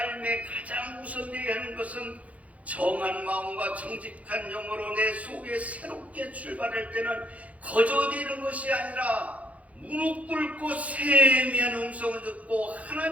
가장 우선되어야 하는 것은 정한 마음과 정직한 영으로 내 속에 새롭게 출발할 때는 거저되는 것이 아니라 무릎 꿇고 세미한 음성을 듣고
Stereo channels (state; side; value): late; left; 0.067 ms